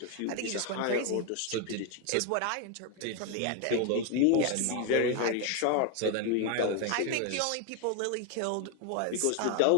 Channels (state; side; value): different; both; correlation 0.01